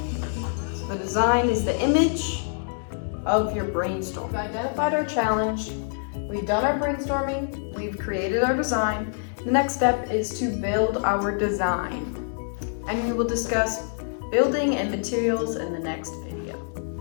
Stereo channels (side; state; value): right; silent; digital silence